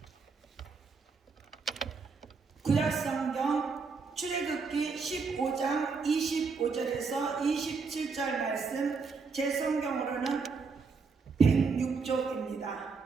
구약성경 출애굽기 15장 25절에서 27절 말씀, 제 성경으로는 106쪽입니다.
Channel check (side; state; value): left; quieter; 4.8 dB